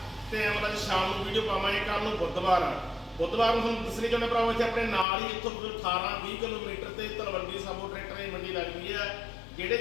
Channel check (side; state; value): right; drops out; at 5.1 s